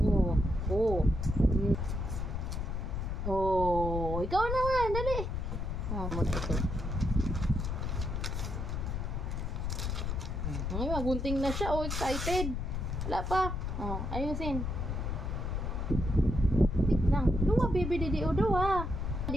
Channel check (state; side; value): noise; left; rumble, 2 dB below the sound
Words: Oh, ikaw naman, dali. Oh, ito. Ay, magunting na siya. Oh, excited. Wala pa. Oh, ayusin. Wait lang. Luwa, baby, didio, duwa.